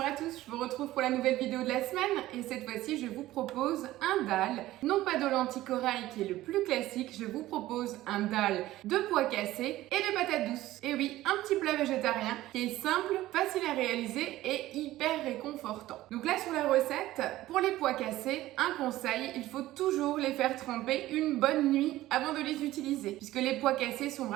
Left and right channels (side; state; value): left; quieter; 15.8 dB